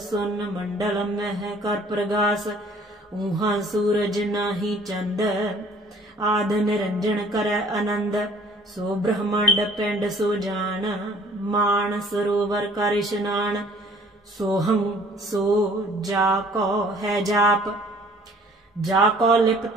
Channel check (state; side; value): normal; both; correlation 0.55